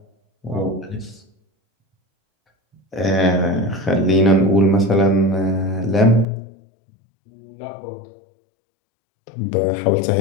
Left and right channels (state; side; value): drops out; right; at 6.2 s